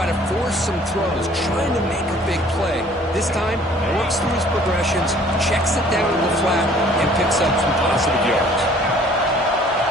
to force some throws, trying to make a big play. This time, works through his progressions, checks it down to the flat, and picks up some positive yards.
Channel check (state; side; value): normal; both; correlation 0.54